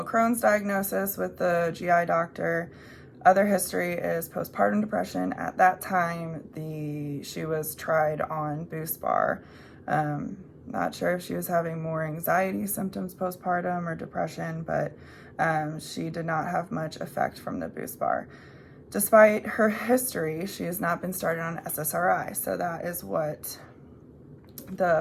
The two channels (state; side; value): identical; both; correlation 1.00